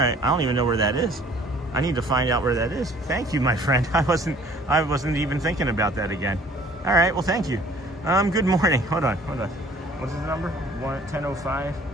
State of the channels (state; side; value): normal; both; correlation 0.54